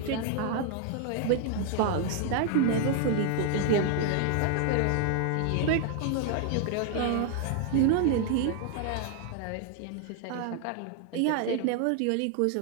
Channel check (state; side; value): different; both; correlation 0.00